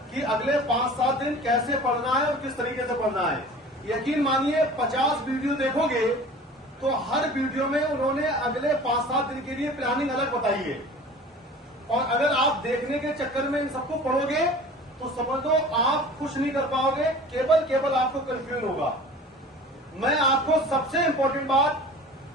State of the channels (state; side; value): normal; both; correlation 0.42